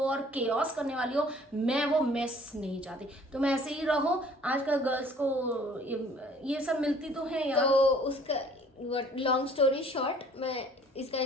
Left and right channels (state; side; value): normal; both; correlation 0.54